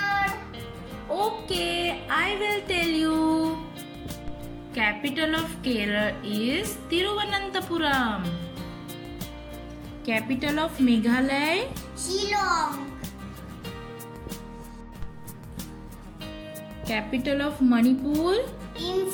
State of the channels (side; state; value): both; identical; correlation 1.00